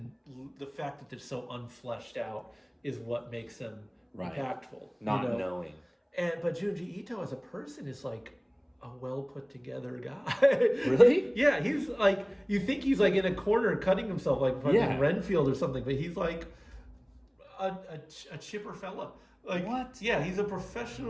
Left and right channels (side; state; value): both; identical; correlation 1.00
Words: the fact that they're so unfleshed out is what makes them impactful. Not you know? knowing. But Junji Ito as a person is like a well put together guy. Really? Yeah, he's like, you think he's like in a corner cutting himself like fucking Renfield or something, but he's like a chipper fella. Like, what? Yeah, he's a